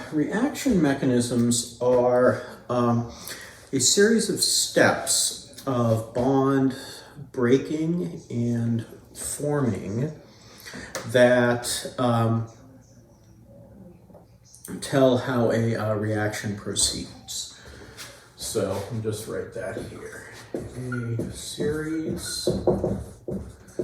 reaction mechanisms are a series of steps of bond breaking and forming that tell how a reaction proceeds. So I'll just write that here. A series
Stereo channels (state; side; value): identical; both; correlation 1.00